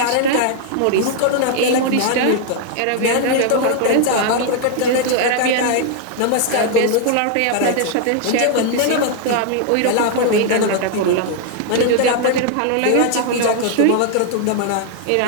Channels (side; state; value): both; different; correlation 0.00